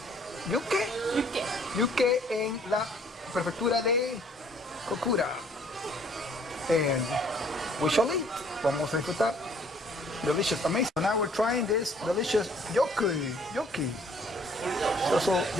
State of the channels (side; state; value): both; normal; correlation 0.60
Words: Yuke. Yuke. Yuke en la prefectura de Kokura. And we shall eat. Vamos a disfrutar. Delicious, amazing. So now we're trying this delicious yoki. So